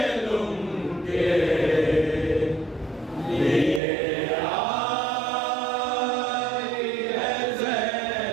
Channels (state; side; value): drops out; left; at 3.8 s